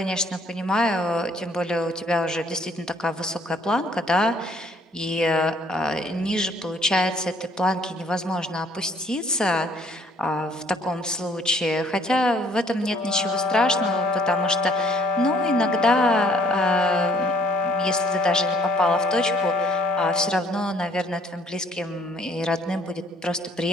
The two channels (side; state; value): both; normal; correlation 0.61